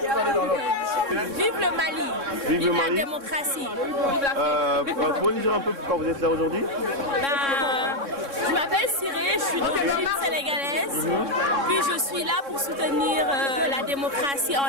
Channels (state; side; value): late; left; 3.6 ms